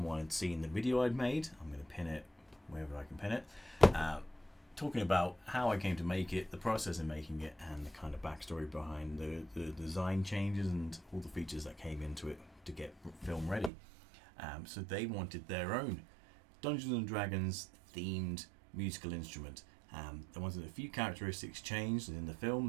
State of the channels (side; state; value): left; drops out; at 13.7 s